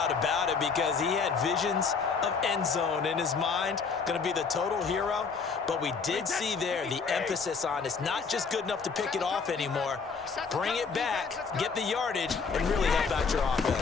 about it, because he had visions of end zone in his mind. Going to be the total hero. But we did see there the emphasis on it's not just good enough to pick it off anymore. Bring it back, get the yardage, and really help out your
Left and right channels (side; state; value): right; quieter; 5.3 dB